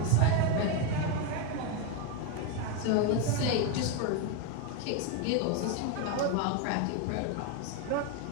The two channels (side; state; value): both; different; correlation 0.02